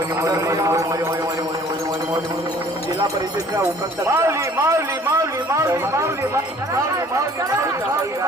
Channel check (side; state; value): both; normal; correlation 0.53